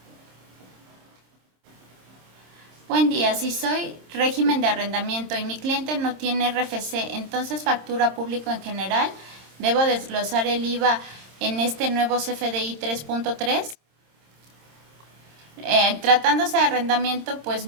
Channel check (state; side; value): late; left; 26 ms